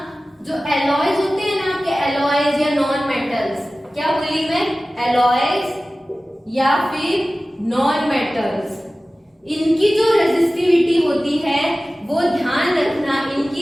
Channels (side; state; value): both; normal; correlation 0.97